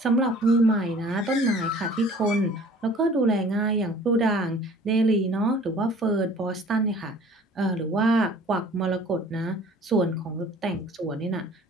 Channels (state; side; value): normal; both; correlation 0.50